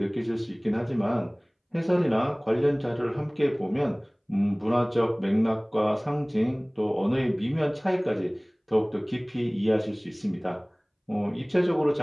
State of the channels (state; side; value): identical; both; correlation 1.00